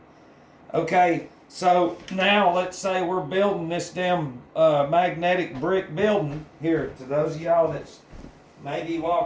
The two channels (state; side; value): identical; both; correlation 1.00